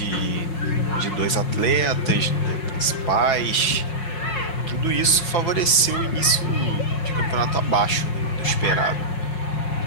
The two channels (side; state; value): right; late; 6.0 ms